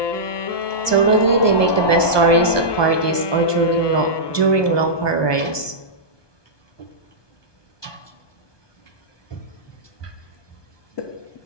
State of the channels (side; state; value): right; late; 1.2 ms